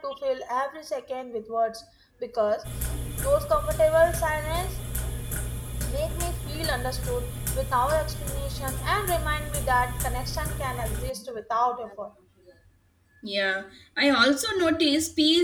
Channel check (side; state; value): both; identical; correlation 1.00